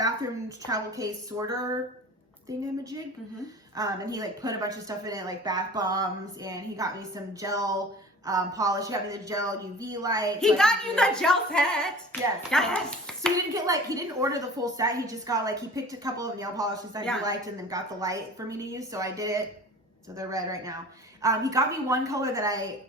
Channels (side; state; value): both; normal; correlation 0.41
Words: travel case sorter thingamajig. Mm-hmm. And he like put a bunch of stuff in it, like bath bombs, and he got me some gel polish. He got me the gel UV light. He got you the gel set. Yes. So he didn't order the full set. He just got he picked a couple of nail polishes that he liked and then got the light for me to use. So I did it. So they're red right now. He got me one color that I